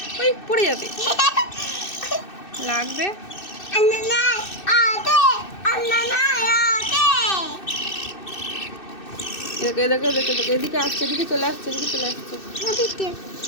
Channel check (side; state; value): right; late; 2.6 ms